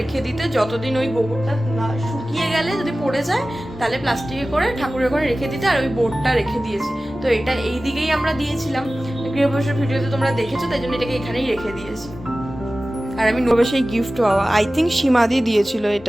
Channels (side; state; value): both; normal; correlation 0.96